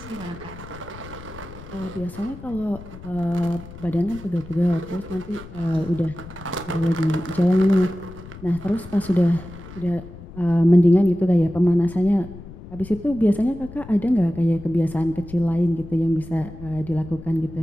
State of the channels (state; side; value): noise; left; rumble, 16 dB below the sound